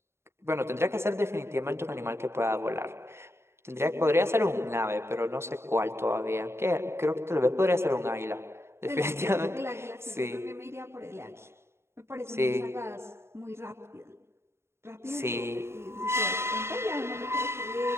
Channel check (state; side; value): late; left; 0.12 ms